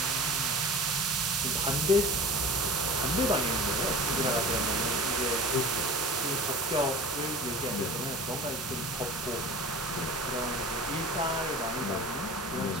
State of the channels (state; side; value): normal; both; correlation 0.37